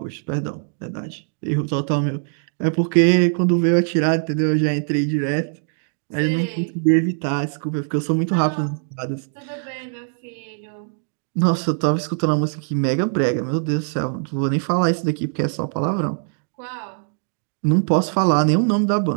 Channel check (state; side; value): silent; left; digital silence